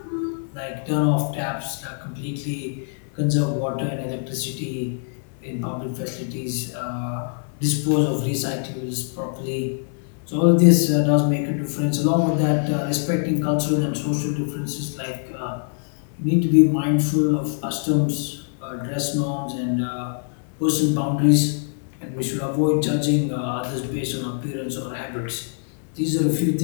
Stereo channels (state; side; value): silent; right; 63 dB below the other